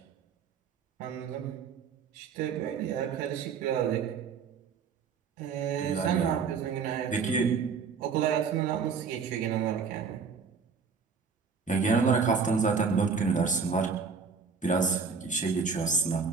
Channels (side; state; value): left; quieter; 5.6 dB